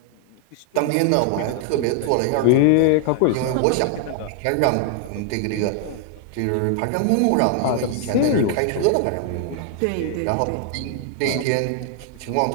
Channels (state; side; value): different; both; correlation 0.00